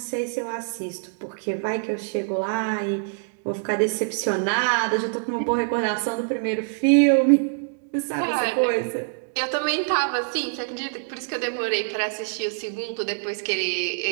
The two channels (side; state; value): left; silent; digital silence